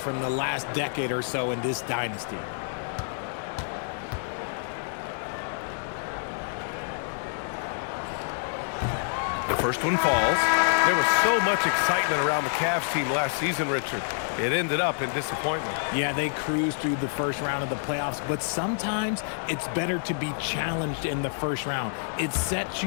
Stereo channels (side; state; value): right; silent; 55 dB below the other